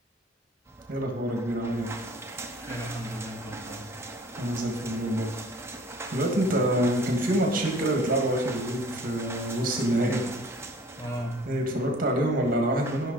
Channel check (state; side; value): normal; both; correlation 0.50